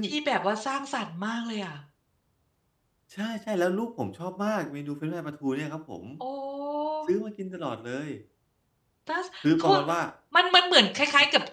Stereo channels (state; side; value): identical; both; correlation 1.00